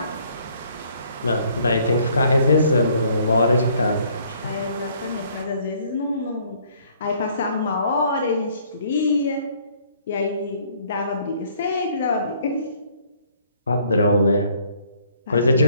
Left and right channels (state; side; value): inverted; both; correlation -0.62